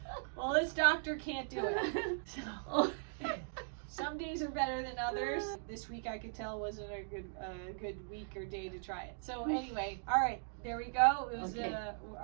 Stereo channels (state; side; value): silent; left; digital silence